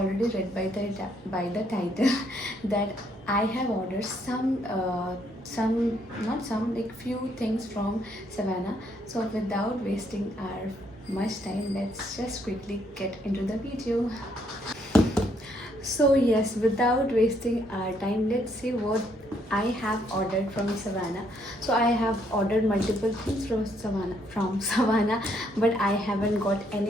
read by the title that I have ordered some not some like few things from Savannah. So without wasting our much time, let's just quickly get into the video. So yes, without wasting our time, let's see what I have ordered from Savannah. So I have ordered multiple things from Savannah, but I haven't got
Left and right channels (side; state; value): both; normal; correlation 0.71